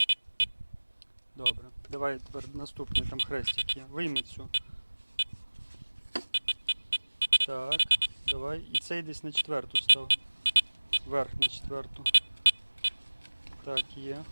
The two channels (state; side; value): inverted; both; correlation -1.00